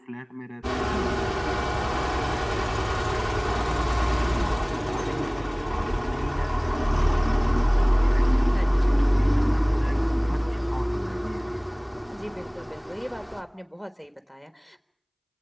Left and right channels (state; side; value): identical; both; correlation 1.00